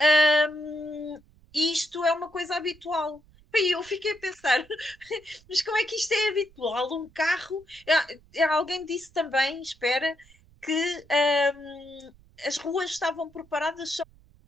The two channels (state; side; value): noise; right; rumble, 28 dB below the sound